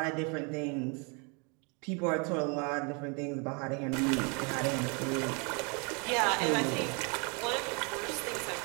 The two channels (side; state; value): left; quieter; 33.8 dB